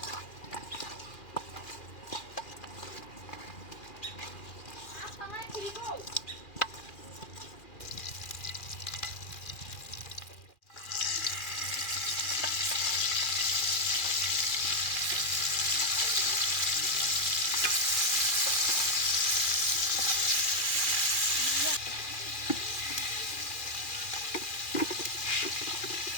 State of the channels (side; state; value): right; late; 2.4 ms